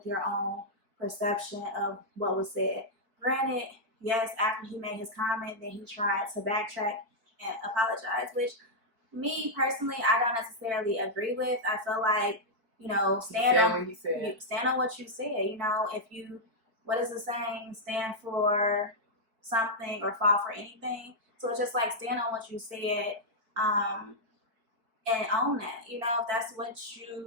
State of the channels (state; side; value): late; left; 4.6 ms